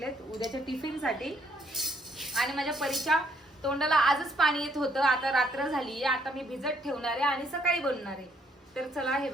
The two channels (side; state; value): both; normal; correlation 0.69